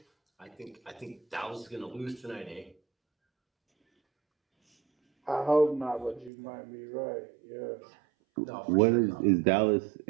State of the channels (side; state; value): left; drops out; at 6.3 s